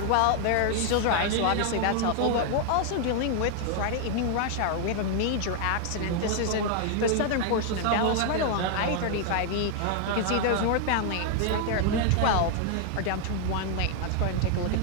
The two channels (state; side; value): different; both; correlation 0.00